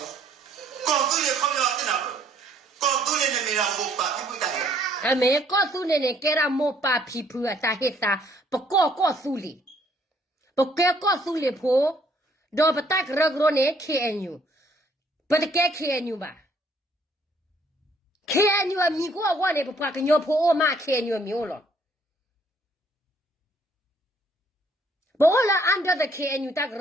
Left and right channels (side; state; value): both; normal; correlation 0.64